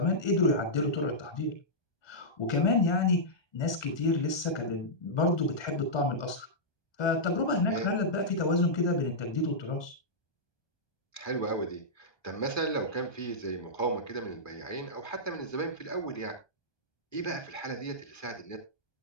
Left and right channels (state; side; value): late; right; 1.2 ms